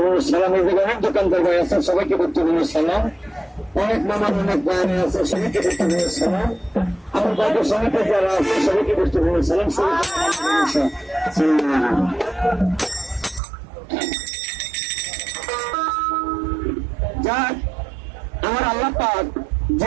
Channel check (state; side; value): drops out; left; at 13.4 s